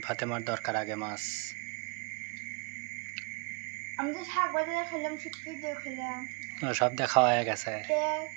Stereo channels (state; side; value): quieter; left; 33.0 dB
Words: ফাতেমার দরকার আগে মাছ। আমি তো শাক বাজারে খেলাম, শুটকি দিয়ে খেলাম, সব দেখা হয়ে গেছে